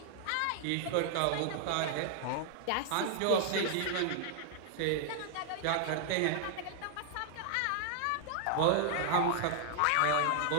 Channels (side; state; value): both; different; correlation 0.00